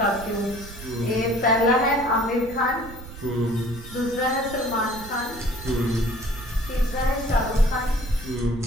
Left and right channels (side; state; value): right; noise; rumble, 14 dB below the sound